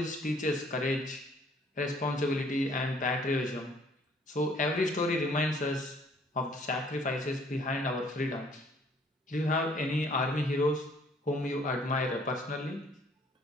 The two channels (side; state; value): both; normal; correlation 0.60